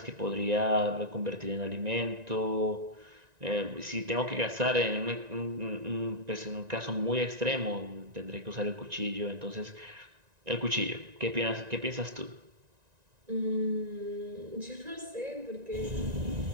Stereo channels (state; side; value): late; left; 1.9 ms